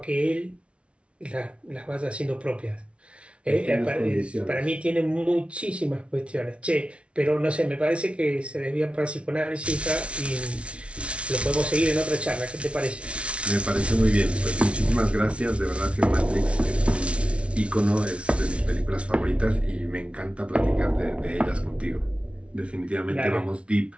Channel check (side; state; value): left; late; 0.060 ms